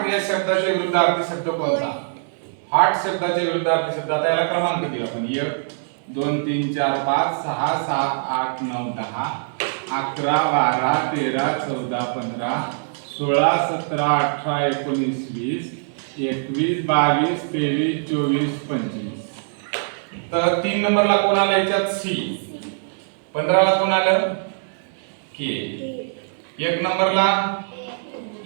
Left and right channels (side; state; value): left; silent; 64 dB below the other